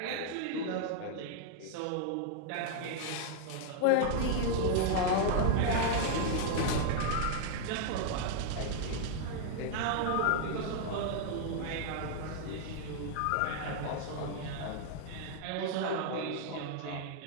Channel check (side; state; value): both; different; correlation 0.00